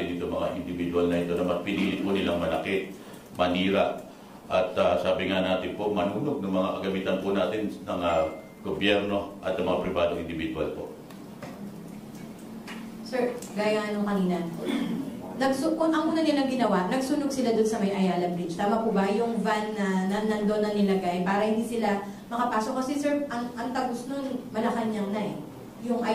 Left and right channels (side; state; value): both; identical; correlation 1.00